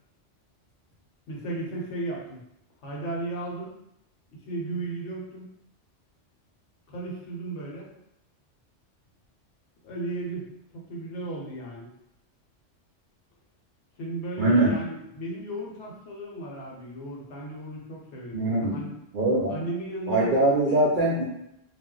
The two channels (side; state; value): both; normal; correlation -0.15